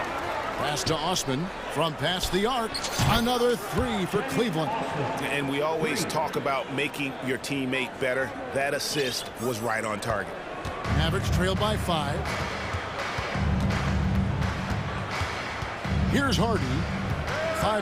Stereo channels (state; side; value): identical; both; correlation 1.00